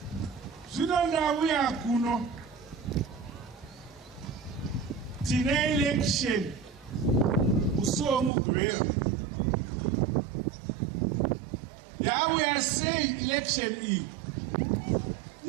Zvino ndauya kuno tine election musi womugwera. Yauya sei election iyi?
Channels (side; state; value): left; drops out; at 8.3 s